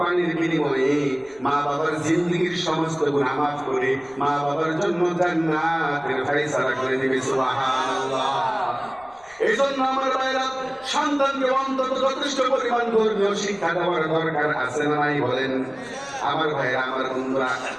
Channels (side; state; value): left; noise; rumble, 29 dB below the sound